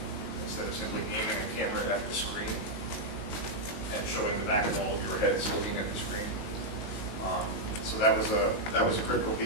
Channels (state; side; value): late; right; 18 ms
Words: instead of simply aiming a camera at the screen and showing the back of all of your heads looking at the screen. So that was a critical